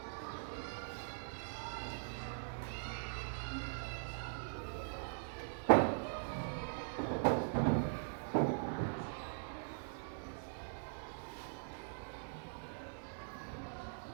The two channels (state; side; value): silent; left; digital silence